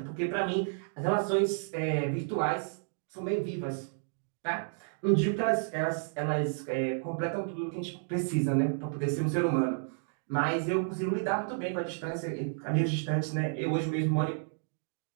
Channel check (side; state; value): left; silent; digital silence